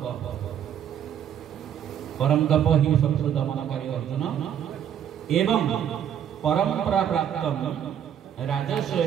परम तप ही शत्रु दमनकारी अर्जुन एवं परंपरा प्राप्त राजस्व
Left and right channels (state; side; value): quieter; left; 9.3 dB